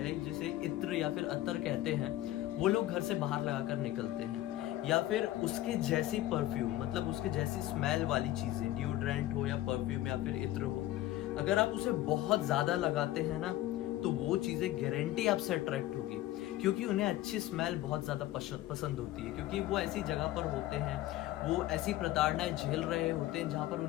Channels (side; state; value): right; quieter; 15.0 dB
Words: जिसे इत्र या फिर अत्तर कहते हैं, वो लोग घर से बाहर लगाकर निकलते हैं, या फिर उसके जैसी परफ्यूम, मतलब उसके जैसी स्मेल वाली चीजें, डिओड्रेंट हो या परफ्यूम या फिर इत्र हो, अगर आप उसे बहुत ज्यादा लगाते हैं ना तो वो चीजें गारंटी आपसे अट्रैक्ट होगी, क्योंकि उन्हें अच्छी स्मेल बहुत ज्यादा पसंद होती है, क्योंकि वो ऐसी जगह पर होते हैं, वो ऐसी प्रताड़नाएं झेल रहे होते हैं जहाँ पर